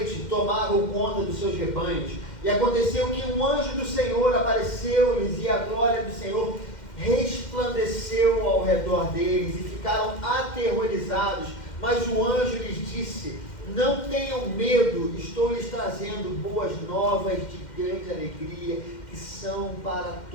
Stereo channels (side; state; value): right; late; 2.1 ms